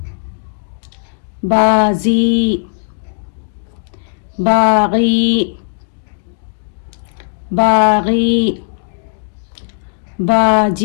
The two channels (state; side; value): silent; right; digital silence